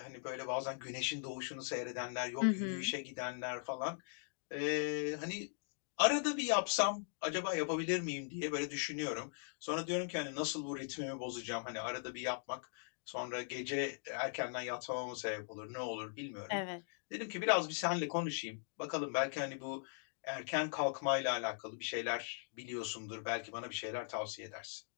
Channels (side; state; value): right; silent; digital silence